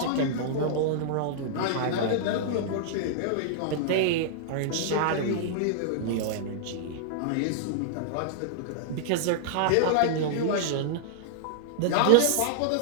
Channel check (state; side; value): different; both; correlation -0.01